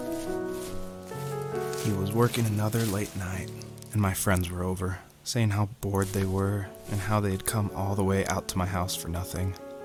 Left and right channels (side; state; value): both; identical; correlation 1.00